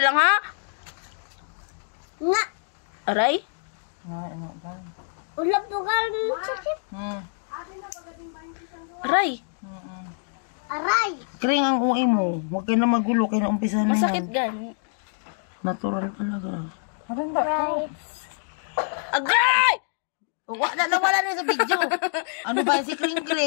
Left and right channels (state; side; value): silent; right; digital silence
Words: ha? Nga. Aray? Ulap dugal ng sakit. Aray? Aray. Kring ang uwi mo. Huwag kayo na magulo. Kayo na umpisa na Masakit yan. gani. Natural talaga. Right. Agay! Nawala na sa video. Ano ba yung si Kring